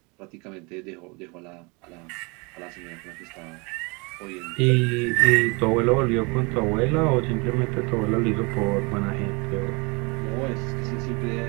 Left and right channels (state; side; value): quieter; left; 28.8 dB